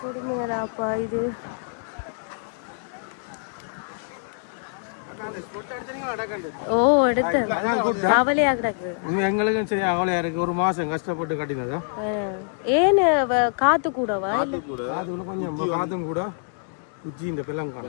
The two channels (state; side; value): silent; right; digital silence